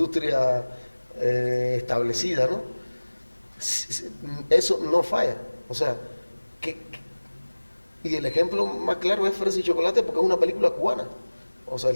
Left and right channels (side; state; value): both; inverted; correlation -1.00